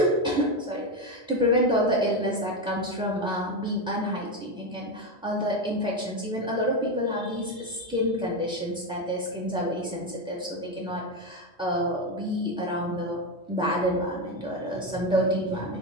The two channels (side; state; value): both; normal; correlation 0.12